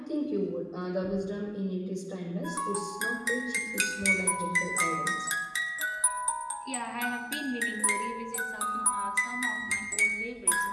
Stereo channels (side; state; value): both; identical; correlation 1.00